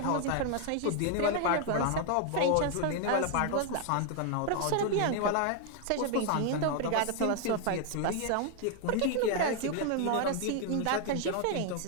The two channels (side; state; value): both; different; correlation 0.00